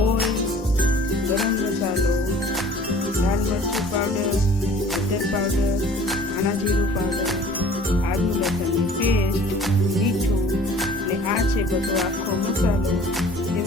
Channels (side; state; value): both; normal; correlation 0.49